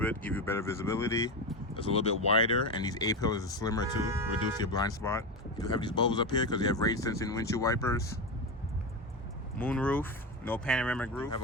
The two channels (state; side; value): normal; both; correlation 0.17